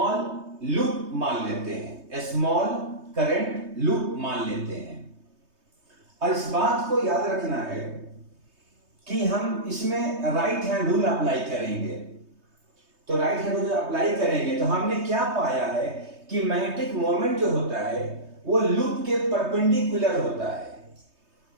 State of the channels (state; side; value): late; left; 3.2 ms